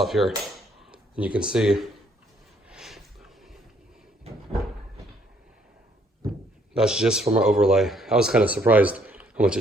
here and you can see. That's just from our overlay. I was kind of surprised how much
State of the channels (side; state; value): both; normal; correlation 0.67